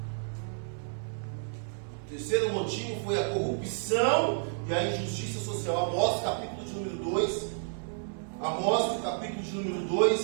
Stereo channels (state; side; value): silent; left; digital silence